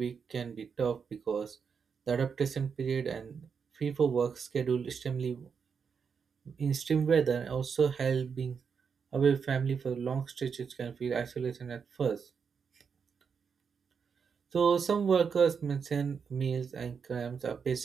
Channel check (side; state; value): left; quieter; 6.2 dB